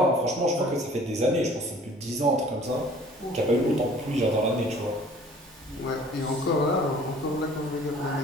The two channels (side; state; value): both; normal; correlation 0.51